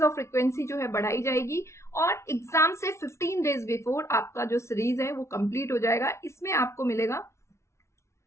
ऑफ फ्रिक्वेंसी जो है बढ़ाई जाएगी और एग्जाम से 15 डेज बिफोर आपका जो सीरीज है वो कंप्लीट हो जाएगा। इसमें आपको मिलेगा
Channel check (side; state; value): right; late; 0.13 ms